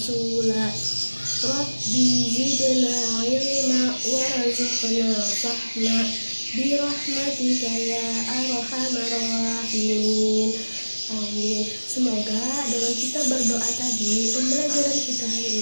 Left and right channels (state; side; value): inverted; both; correlation -1.00